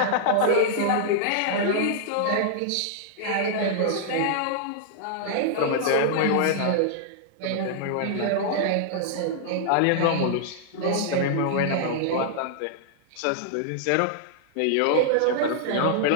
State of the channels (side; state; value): both; different; correlation -0.01